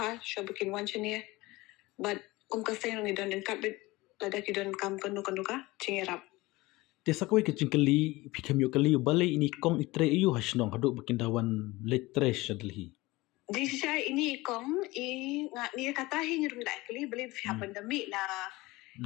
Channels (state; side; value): quieter; right; 20.7 dB